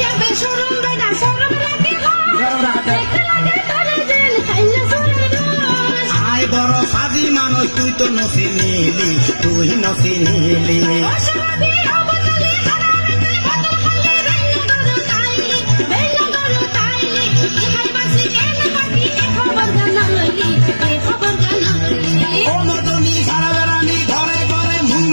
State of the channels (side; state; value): both; inverted; correlation -1.00